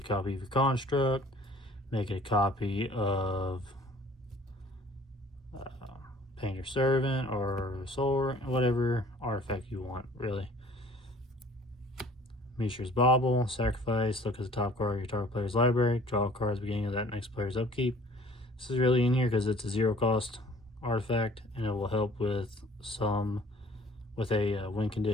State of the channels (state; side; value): normal; both; correlation 0.52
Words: copy of your construct, make it a copy of Painter Servant or Soul, whatever artifact you want, really. Mishra's Bauble, sacrifice, look at the top card of your target player's library, draw a card at the beginning of that next player's upkeep. This is really in here because it's a 0 cost artifact and it will help with a win